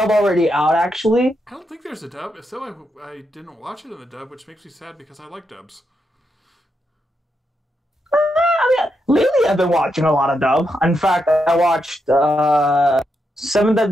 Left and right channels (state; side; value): normal; both; correlation 0.83